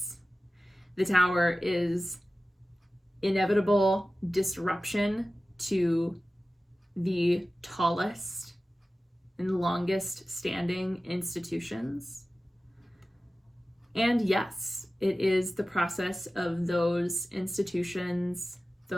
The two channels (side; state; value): both; normal; correlation 0.95